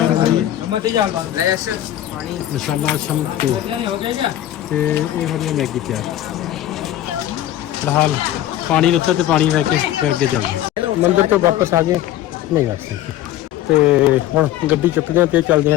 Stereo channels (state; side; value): quieter; right; 12.9 dB